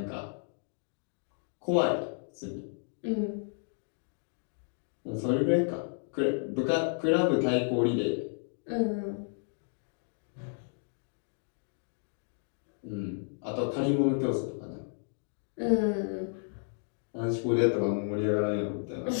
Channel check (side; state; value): right; silent; digital silence